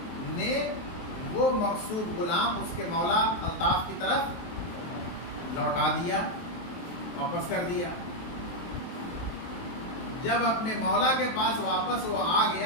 نے وہ مغصوب غلام اس کے مولا الطاف کی طرف لوٹا دیا، واپس کر دیا۔ جب اپنے مولا کے پاس واپس وہ آ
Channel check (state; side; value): late; right; 23 ms